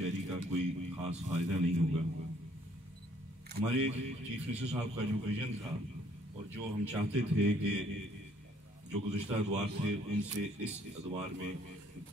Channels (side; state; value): both; normal; correlation 0.62